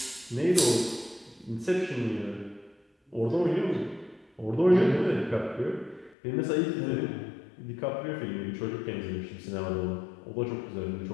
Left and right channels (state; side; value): drops out; right; at 6.2 s